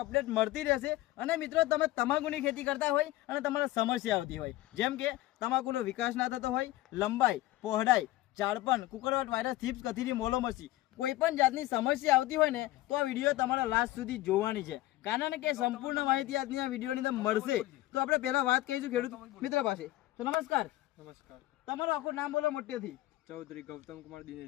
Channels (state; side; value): quieter; right; 16.7 dB